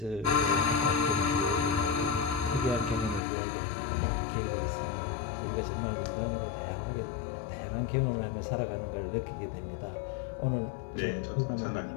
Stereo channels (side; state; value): right; drops out; at 3.2 s